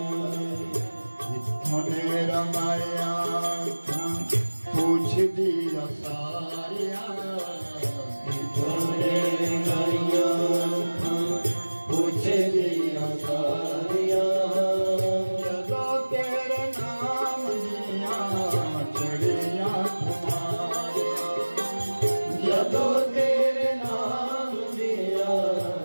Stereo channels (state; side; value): inverted; both; correlation -1.00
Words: इतने रमाया पूछ दिया सारिया इतने रमाया पूछ दिया सारिया जदो तेरे नाम दिया जड़िया जदो तेरे नाम दिया